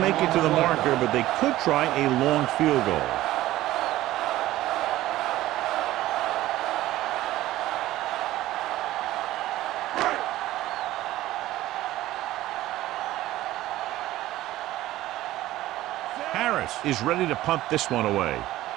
it to the marker, but they could try a long field goal. Harris is ready to punt this one away.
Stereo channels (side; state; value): left; quieter; 15.6 dB